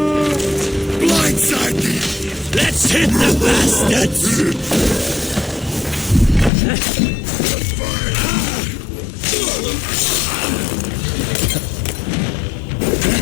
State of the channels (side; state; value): right; drops out; at 6.5 s